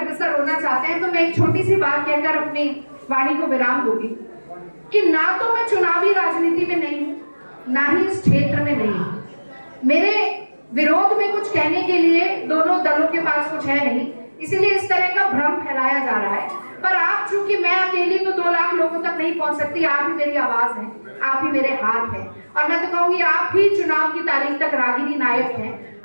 होना चाहते हैं, तो मैं एक छोटी सी बात कहकर अपनी वाणी को विराम दूंगी कि ना तो मैं चुनावी राजनीति में नहीं हूं, ना ही इस क्षेत्र में नहीं हूं। मेरे विरोध में कुछ कहने के लिए दोनों दलों के पास कुछ है नहीं, इसीलिए इस तरह का भ्रम फैलाया जा रहा है। पर आप, चूंकि मैं अकेली तो 2 लाख लोगों तक नहीं पहुंच सकती, आप ही मेरी आवाज है, आप ही मेरे हाथ हैं। और मैं तो कहूंगी आप ही चुनाव की तारीख तक रागिनी नायक हैं।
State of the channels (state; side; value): inverted; both; correlation -1.00